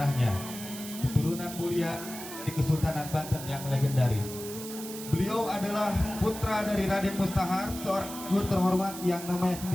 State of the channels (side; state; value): right; noise; hiss, 11 dB below the sound